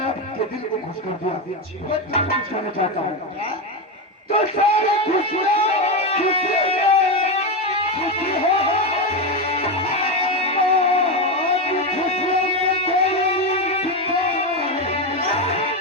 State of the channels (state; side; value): normal; both; correlation 0.12